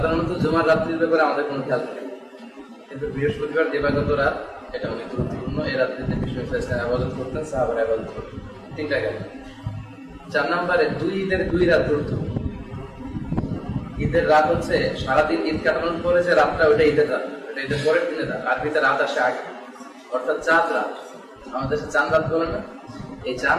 জুমার রাত্রির ব্যাপারে আমাদের কোনো খেয়াল থাকে, কিন্তু বৃহস্পতিবার দিবাগত রাত এটা অনেক গুরুত্বপূর্ণ। এই রাত্রিতে বিষ্ণু ইসলাম ইবাদত করতেন, সাহাবারা ইবাদত করতেন। 3টা গেল। 4 নম্বরে ঈদের 2 রাত গুরুত্বপূর্ণ। ঈদের রাত হচ্ছে সারাদিন ঈদ কাটানোর পরে যে রাতটা, ওটা ঈদের রাত, ওটা ঈদের পরের দিনের রাত। আরবিতে রাত আসে আগে, অর্থাৎ চাঁদ রাত। আমাদের দেশে চাঁদ রাত বলে না, এই চাঁদ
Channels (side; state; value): both; identical; correlation 1.00